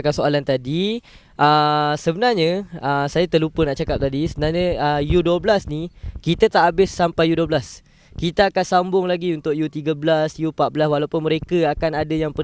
soalan tadi, sebenarnya saya terlupa nak cakap tadi. Sebenarnya U12 ni kita tak habis sampai U12. Kita akan sambung lagi untuk U13, U14, walaupun mereka akan ada yang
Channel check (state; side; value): identical; both; correlation 1.00